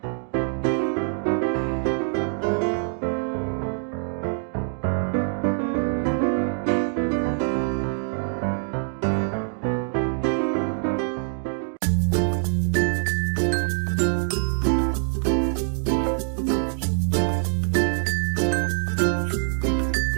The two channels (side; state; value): left; silent; 62 dB below the other